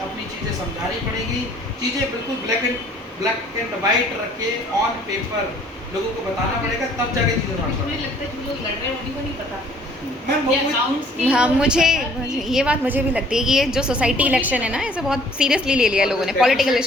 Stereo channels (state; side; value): normal; both; correlation 0.57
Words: अपनी चीज़ें समझानी पड़ेगी, चीज़ें बिल्कुल ब्लैक एंड वाइट रख के ऑन पेपर लोगों को बताना पड़ेगा, तब जाके चीज़ें मुझे लगता है जो लोग लड़ रहे हैं उन्हीं को नहीं पता मैम ये वो अकाउंट्स की हाँ वो मुझे पता कि- मुझे ये बात मुझे भी लगती है कि ये जो सोसाइटी इलेक्शन है ना इसे बहुत सीरियसली ले लिया और लोगों जो ने, पॉलिटिकल deficit